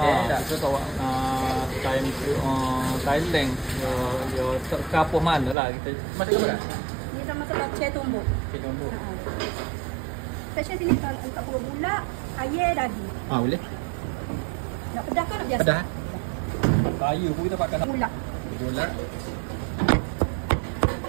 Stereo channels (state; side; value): drops out; left; at 5.6 s